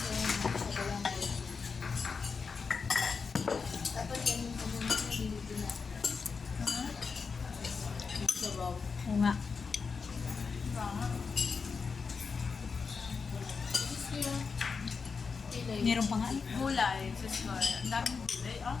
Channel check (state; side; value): quieter; right; 5.2 dB